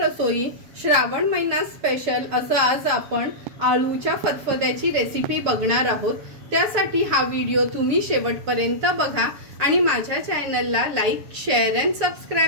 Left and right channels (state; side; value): late; left; 6.8 ms